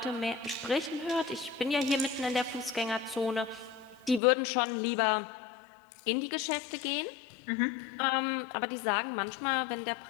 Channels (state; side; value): drops out; right; at 4.2 s